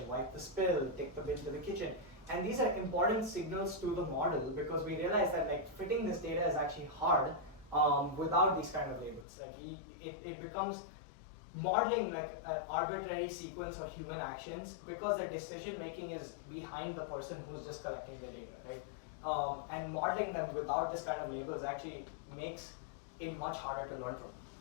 wipe the spill, take the bin to the kitchen. And these are important signals to the model because we realize that like fitting this data is actually hard without these kind of labels. Like it becomes modeling like an arbitrary sequence of human actions because the decision making is behind the person who's just collecting the data, right? And modeling them without this kind of labels actually makes it much harder to learn from.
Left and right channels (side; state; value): right; drops out; at 9.2 s